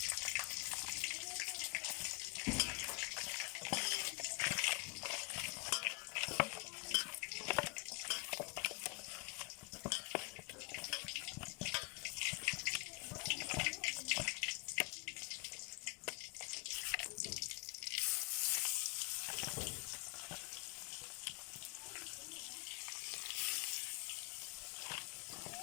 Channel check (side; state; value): right; quieter; 31.4 dB